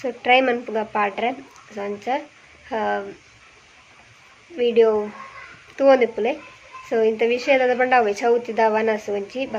ಟ್ರೈ ಮನ್ಪುಗ ಪಾಡ್ರೆ ಸೊ ಅಂಚ ವಿಡಿಯೋ ತೂವೊಂದಿಪ್ಪುಲೆ. ಸೊ ಇಂಥ ವಿಷಯದ ಪಂಡ ಅವೆ ಚೌತಿದ ವನಸು ಒಂಚಿ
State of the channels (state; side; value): identical; both; correlation 1.00